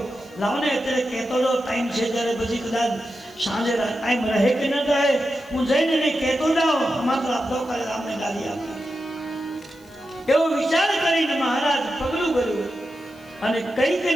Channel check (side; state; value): left; noise; hiss, 28 dB below the sound